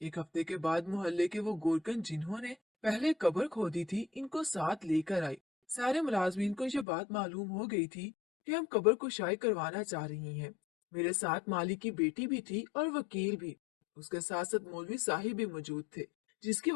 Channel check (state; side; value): drops out; right; at 6.9 s